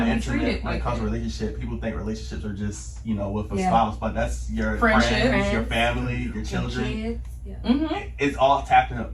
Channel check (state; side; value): identical; both; correlation 1.00